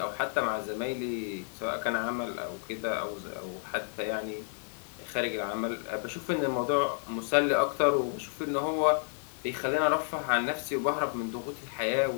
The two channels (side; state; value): right; silent; 57 dB below the other